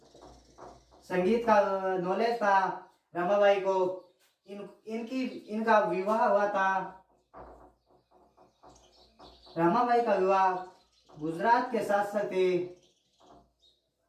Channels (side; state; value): both; identical; correlation 1.00